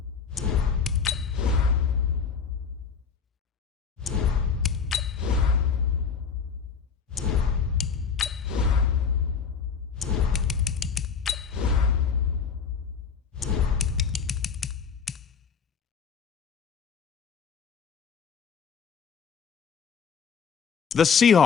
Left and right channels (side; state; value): right; quieter; 6.3 dB